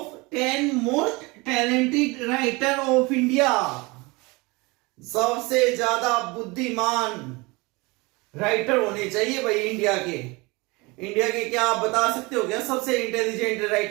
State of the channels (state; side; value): quieter; left; 25.1 dB